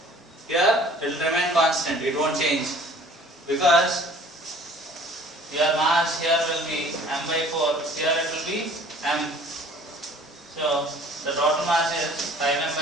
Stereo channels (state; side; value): normal; both; correlation 0.51